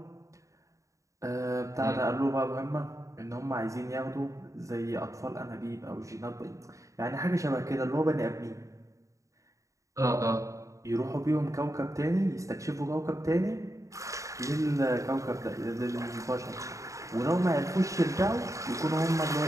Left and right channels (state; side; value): late; left; 0.16 ms